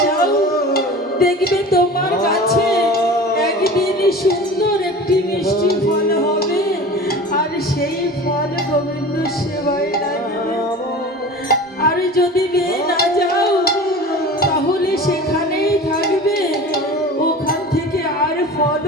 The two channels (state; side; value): normal; both; correlation 0.36